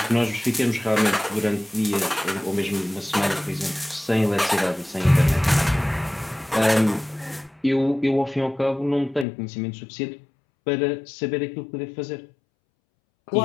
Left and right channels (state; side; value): drops out; right; at 9.2 s